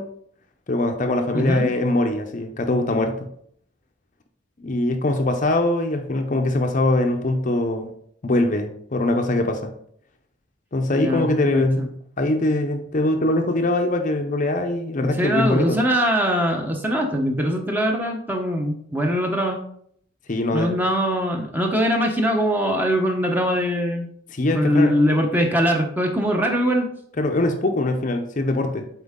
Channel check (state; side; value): normal; both; correlation 0.59